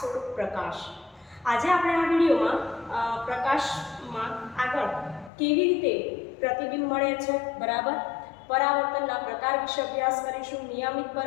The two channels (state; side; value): drops out; right; at 5.3 s